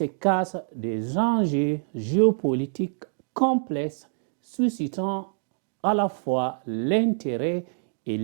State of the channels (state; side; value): silent; left; digital silence